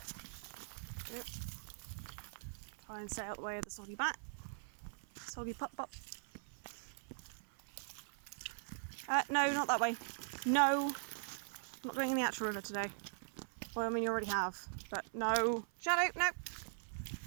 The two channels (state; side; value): silent; left; 50 dB below the other